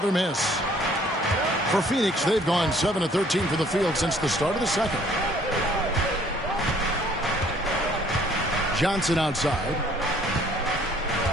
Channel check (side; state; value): both; normal; correlation 0.59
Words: miss. For Phoenix, they've gone 7 of 13 for the field since the start of the second. Johnson outside.